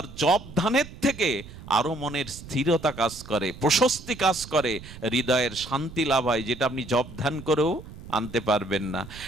জপ ধ্যানের থেকে আরো মনের স্থিরতা কাজ করে, প্রশস্তি কাজ করে, হৃদয়ের শান্তি লাভ হয়, যেটা আপনি জপ ধ্যান করেও আনতে পারবেন না।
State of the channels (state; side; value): noise; right; rumble, 15 dB below the sound